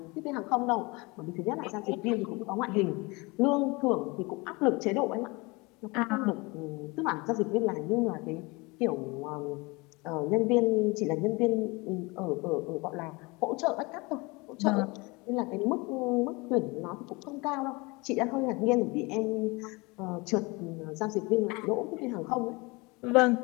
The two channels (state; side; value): quieter; right; 25.7 dB